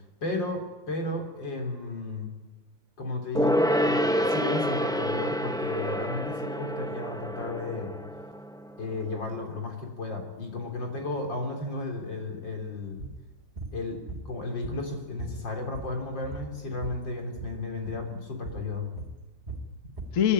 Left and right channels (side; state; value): both; normal; correlation 0.22